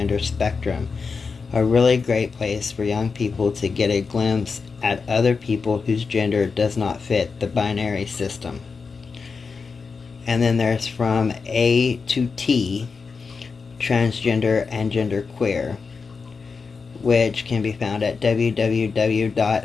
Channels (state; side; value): quieter; right; 5.0 dB